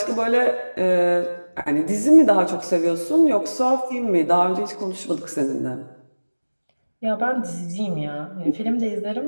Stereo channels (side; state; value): both; inverted; correlation -1.00